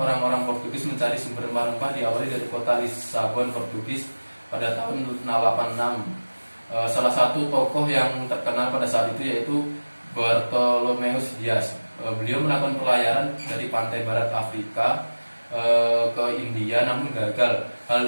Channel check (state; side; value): inverted; both; correlation -1.00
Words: Portugis mencari sumber rempah-rempah diawali dari kota Lisabon, Portugis pada tahun 1686. Salah satu tokoh yang terkenal pada saat itu yaitu Bartolomeus Dias. Beliau melakukan pelayaran dari pantai barat Afrika ke India namun gagal.